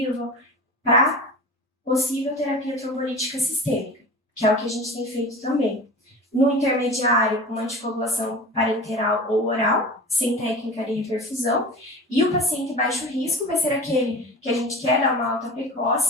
para possível terapia trombolítica sistêmica, que é o que a gente tem feito também. No intermediário, uma anticoagulação parenteral ou oral, sem técnica de reperfusão. E o paciente baixo risco vai ser aquele que a gente quer dar uma alta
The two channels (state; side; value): normal; both; correlation 0.34